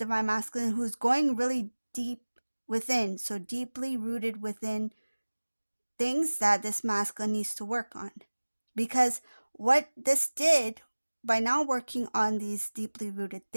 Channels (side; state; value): both; inverted; correlation -1.00